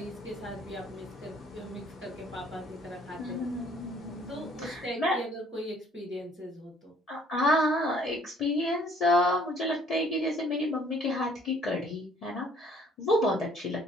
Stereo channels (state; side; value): normal; both; correlation 0.59